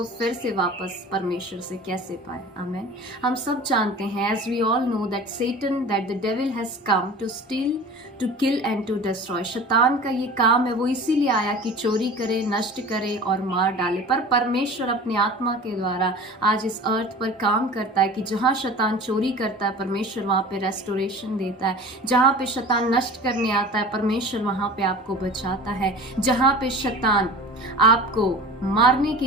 फिर से वापस परमेश्वर से कैसे पाए। आमेन। हम सब जानते हैं, as we all know that Satan, that the devil has come to steal, to kill and to destroy. शैतान का ये काम है, वो इसीलिए आया कि चोरी करे, नष्ट करे और मार डाले। पर परमेश्वर अपनी आत्मा के द्वारा आज इस अर्थ पर काम करता है कि जहाँ शैतान चोरी करता है, परमेश्वर वहाँ पे रेस्टोरेशन देता है। जहाँ पे शैतान नष्ट करने आता है, परमेश्वर वहाँ पे आपको बचाता है। जहाँ पे शैतान आपको मारने के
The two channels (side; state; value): both; normal; correlation 0.39